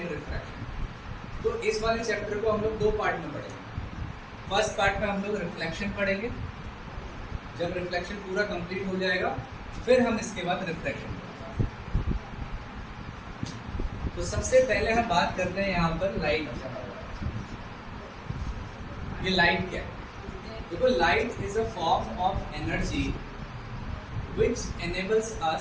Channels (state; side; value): identical; both; correlation 1.00